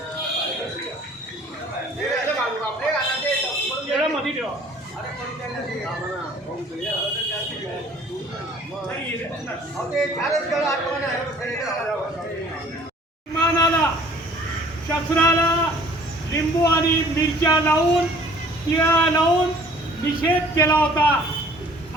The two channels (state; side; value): normal; both; correlation 0.53